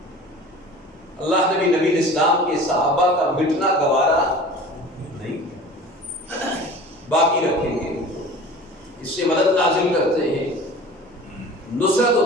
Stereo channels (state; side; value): normal; both; correlation 0.40